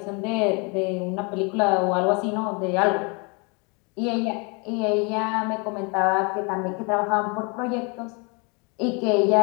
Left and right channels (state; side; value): quieter; right; 32.2 dB